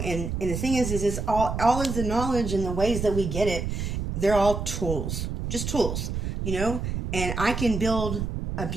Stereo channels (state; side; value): noise; right; rumble, 3 dB below the sound